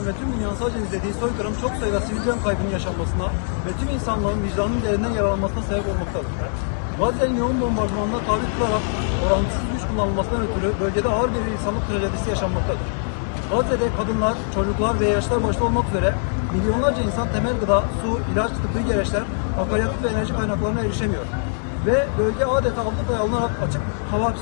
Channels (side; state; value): right; silent; digital silence